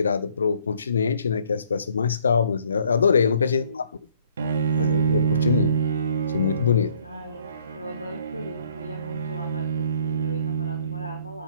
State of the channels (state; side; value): inverted; both; correlation -0.61